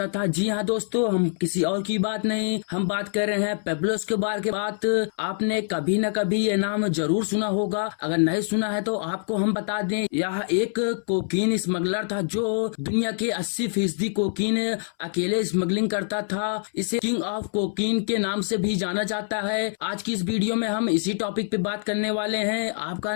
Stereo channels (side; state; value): right; silent; 62 dB below the other